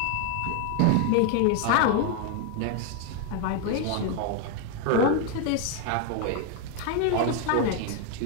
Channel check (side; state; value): both; different; correlation 0.00